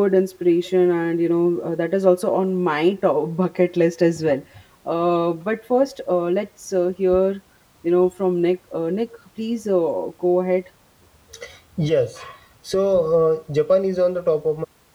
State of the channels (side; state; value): both; identical; correlation 1.00